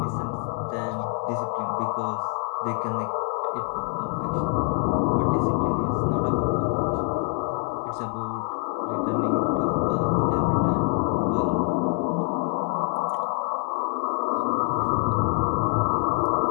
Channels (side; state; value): right; quieter; 32.1 dB